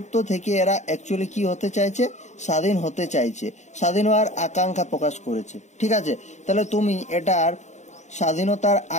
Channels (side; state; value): right; late; 0.34 ms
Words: থেকে এরা অ্যাকচুয়ালি কি হতে চাইছে? স্বাধীন হতে চাইছে, স্বাধীন হওয়ার আকাঙ্ক্ষা প্রকাশ করেছে। ঠিক আছে, তাহলে তুমি এটার স্বাধীনতার